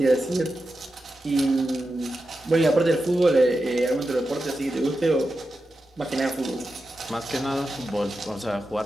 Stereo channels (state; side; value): normal; both; correlation 0.90